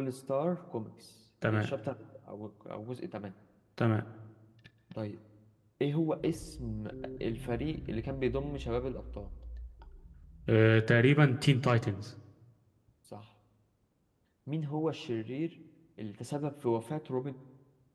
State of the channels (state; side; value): identical; both; correlation 1.00